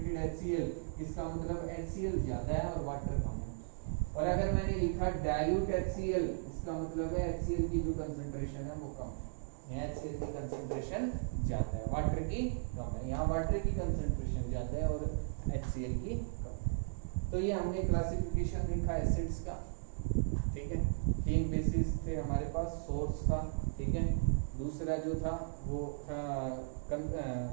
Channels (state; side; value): silent; left; digital silence